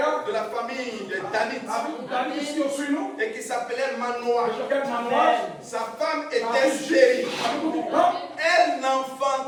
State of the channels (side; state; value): both; identical; correlation 1.00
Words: de la famille des Danites, et qui s'appelait Manoah. Sa femme était stérile. Elle